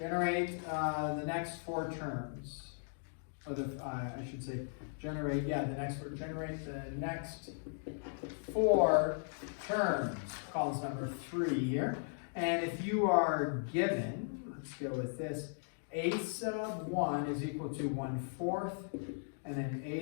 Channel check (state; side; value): silent; right; digital silence